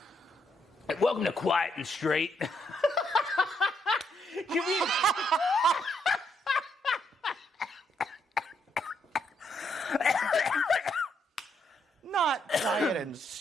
Welcome to Quiet and Straight. Can we... Not quiet and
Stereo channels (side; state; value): both; normal; correlation 0.76